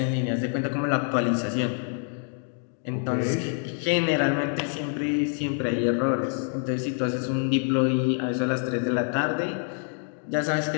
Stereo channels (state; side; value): silent; right; 59 dB below the other